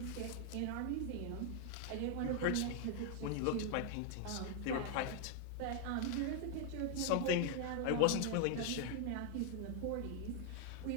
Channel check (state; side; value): different; both; correlation 0.00